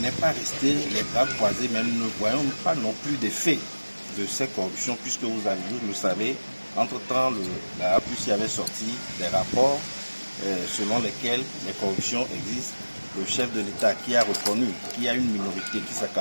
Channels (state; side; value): inverted; both; correlation -1.00